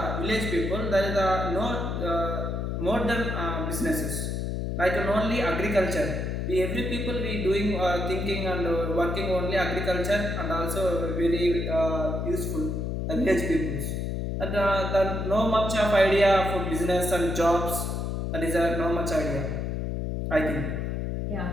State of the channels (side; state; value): left; noise; hum, 2 dB below the sound